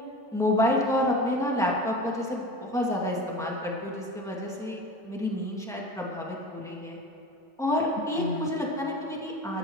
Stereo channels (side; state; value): both; normal; correlation 0.34